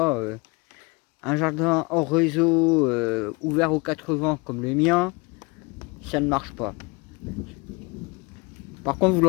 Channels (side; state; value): right; quieter; 27.6 dB